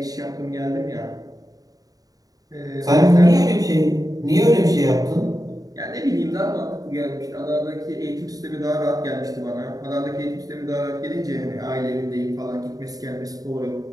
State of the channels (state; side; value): late; left; 0.18 ms